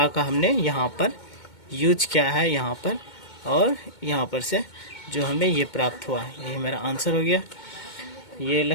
का हमने यहाँ पर यूज किया है यहाँ पर, और यहाँ पर से जो हमें ये प्राप्त हुआ, यही मेरा आंसर हो गया। ये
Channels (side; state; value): right; late; 2.2 ms